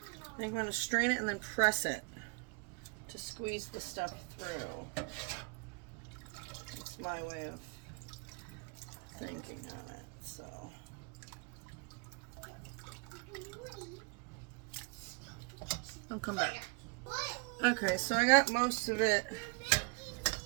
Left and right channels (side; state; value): left; quieter; 32.3 dB